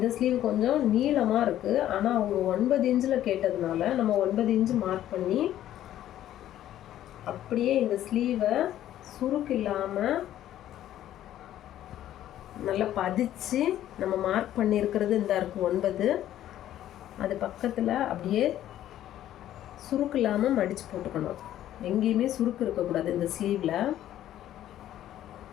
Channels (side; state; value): right; quieter; 12.4 dB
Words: ஸ்லீவ் கொஞ்சம் நீளமாக இருக்குது. ஆனால் அவங்க 9 இன்ச்சில் கேட்டதுனால நம்ம 9 இன்ச்சு மார்க் பண்ணி அப்படியே இந்த ஸ்லீவை சுருக்கு இல்லாமல் நல்லா பதிச்சு நம்ம மார்க் பண்ணியிருக்கிறது இந்த இருக்குது 9. அது பக்கத்தில் அப்படியே சுருக்கு இல்லாமல் மடித்து போட்டுக்கணும். எங்கேயுமே சுருக்கு இருக்கக்கூடாது. இந்த ஸ்லீவில்